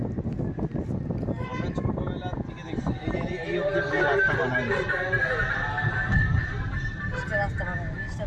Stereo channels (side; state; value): both; identical; correlation 1.00